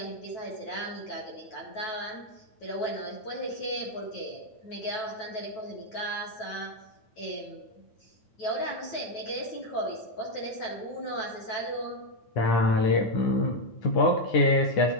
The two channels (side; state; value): right; late; 9.2 ms